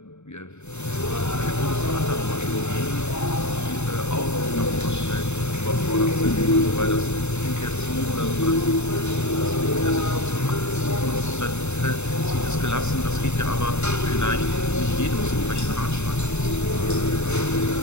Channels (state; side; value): late; right; 0.82 ms